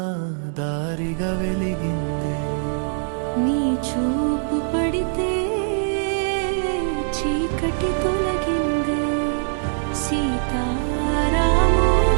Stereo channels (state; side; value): silent; left; 64 dB below the other